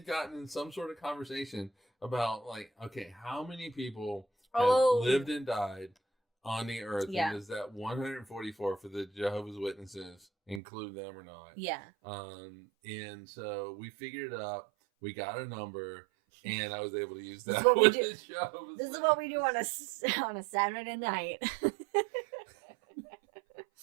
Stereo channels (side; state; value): left; drops out; at 10.6 s